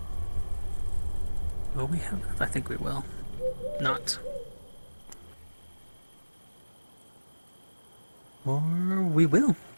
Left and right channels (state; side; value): inverted; both; correlation -1.00